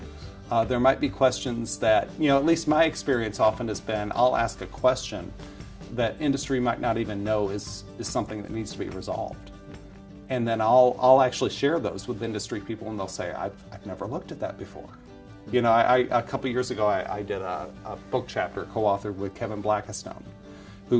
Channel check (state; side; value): identical; both; correlation 1.00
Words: There might be questions that, at least my experience often has been, I'll ask a question that industry might not even know is something that needs to be resolved. And then I'll actually share those with industry people, and they'll say, I've never looked at that before. A couple years ago, I did a book chapter co-authored with Kevin Blackistone,